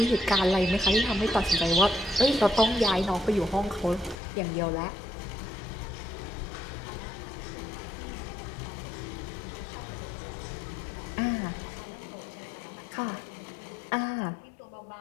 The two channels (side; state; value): right; drops out; at 4.2 s